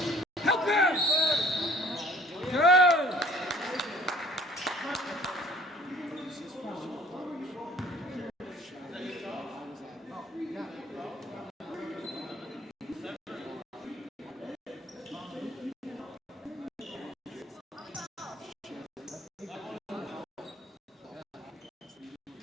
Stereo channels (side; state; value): both; normal; correlation 0.53